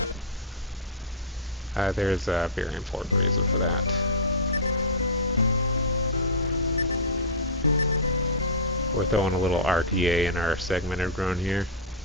There's a very important reason for that. We're throwing a little RTA in our segmented run here.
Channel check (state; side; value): normal; both; correlation -0.12